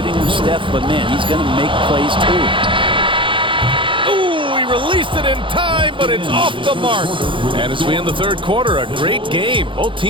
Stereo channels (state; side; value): late; left; 0.25 ms